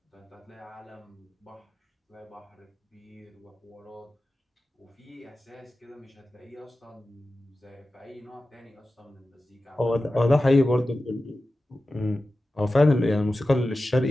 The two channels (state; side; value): normal; both; correlation 0.94